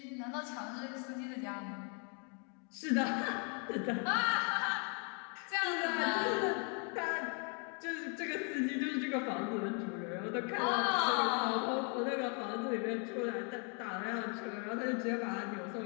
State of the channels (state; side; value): quieter; right; 37.9 dB